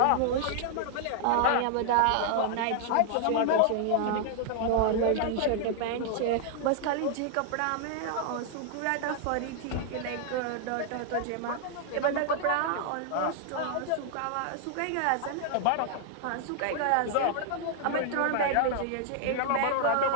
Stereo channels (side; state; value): both; different; correlation 0.00